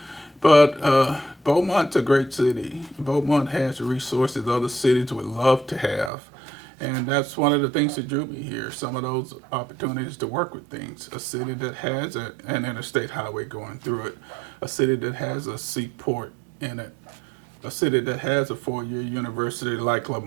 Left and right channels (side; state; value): left; drops out; at 6.1 s